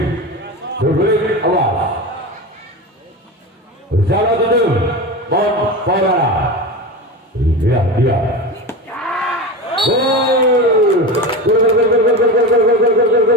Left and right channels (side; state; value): both; normal; correlation 0.24